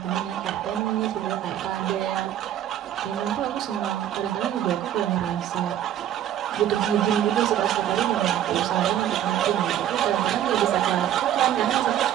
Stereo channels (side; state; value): left; quieter; 11.0 dB